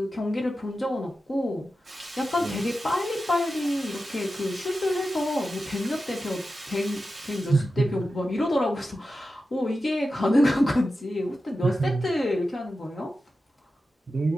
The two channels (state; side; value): normal; both; correlation 0.92